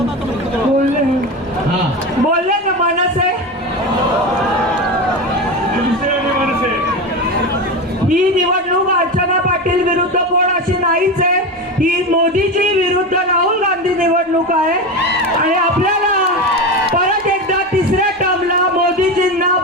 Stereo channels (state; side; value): normal; both; correlation 0.21